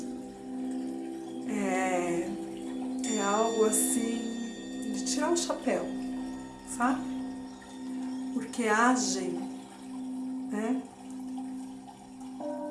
É algo assim de tirar o chapéu, sabe? Porque agem, né?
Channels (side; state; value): both; identical; correlation 1.00